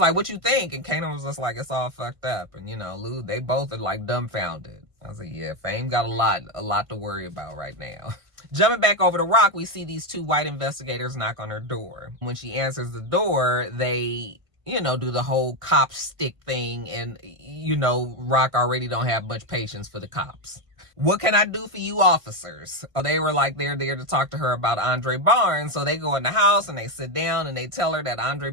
what you think? And Kanan was just like, it's all fucked up. And, Lou, they both are like dumbfounded. I was like, yeah, Fame got a lot to worry about right now. Jumping back over to Rock, we see these two white investigators knock on her door. When she answers the door, they, do the whole cop stick thing. And, Rock already don't have much patience for the cops. What can I do for you officers? They were like, they're there to talk to her about Andre Barnes. So they go in the house and they sit down and they tell her that Andre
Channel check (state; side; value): late; left; 1.5 ms